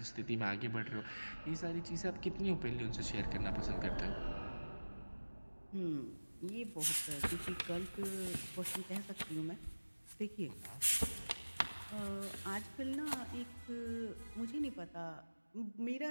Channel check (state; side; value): inverted; both; correlation -1.00